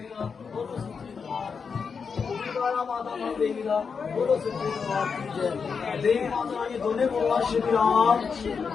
ਦਾ ਬੋਲੋ ਸੱਚੇ ਦਰਬਾਰ ਕੀ ਜੈਕਾਰਾ ਮਾਤਾ ਮਾਂ ਦੇਵੀ ਦਾ ਬੋਲੋ ਸੱਚੇ ਦਰਬਾਰ ਕੀ ਜੈ ਦੇਵੀ ਮਾਤਾ ਰਾਣੀ ਦੋਨੇ ਬੋਲਣਾ ਸ਼੍ਰੀ ਰਾਮ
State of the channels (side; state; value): right; quieter; 5.7 dB